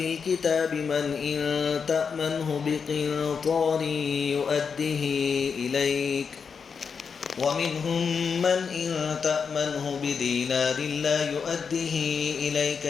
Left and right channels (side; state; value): right; quieter; 6.0 dB